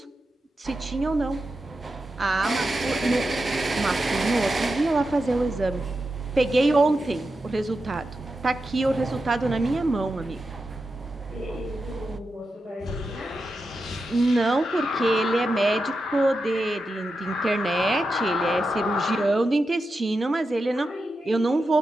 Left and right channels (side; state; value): both; normal; correlation 0.89